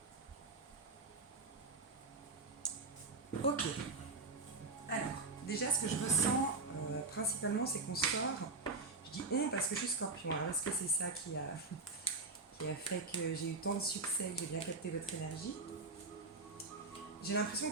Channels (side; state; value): left; quieter; 3.6 dB